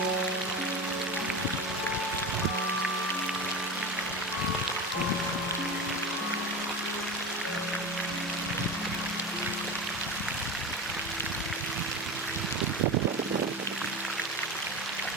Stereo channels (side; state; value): both; normal; correlation 0.25